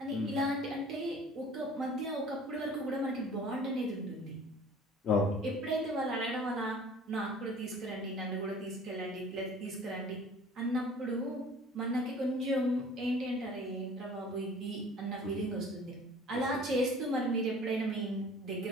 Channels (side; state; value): both; normal; correlation 0.47